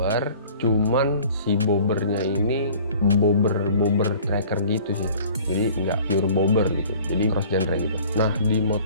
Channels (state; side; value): inverted; both; correlation -0.49